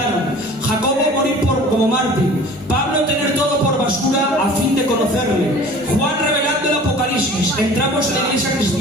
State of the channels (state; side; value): normal; both; correlation 0.45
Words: Jacobo morir como mártir. Pablo tener todo por basura a fin de conocerle. Juan revelando el Apocalipsis. Entramos en la iglesia